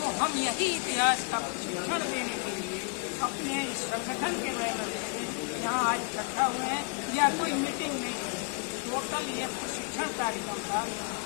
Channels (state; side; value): quieter; right; 33.7 dB